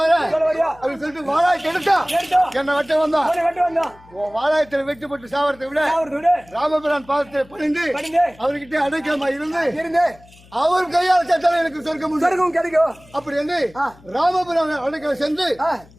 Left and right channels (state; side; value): noise; left; hum, 25 dB below the sound